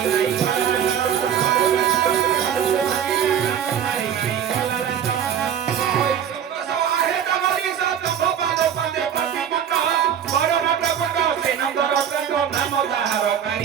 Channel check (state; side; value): quieter; left; 8.8 dB